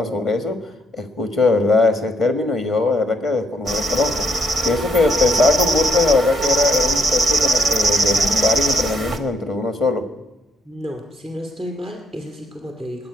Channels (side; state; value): both; normal; correlation 0.70